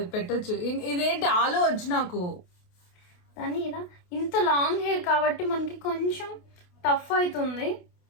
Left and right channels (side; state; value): right; late; 28 ms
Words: పెట్టచ్చు. ఇదేంటి ఆలు వచ్చి నాకు దాన్ని ఇలా. ఇంత లాంగ్ హెయిర్ కాబట్టి మనకి కొంచెం టఫ్ అవుతుంది.